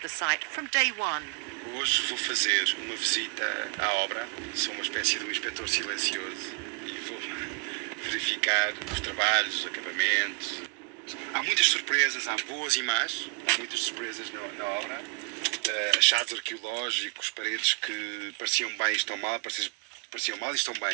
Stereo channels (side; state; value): left; quieter; 32.2 dB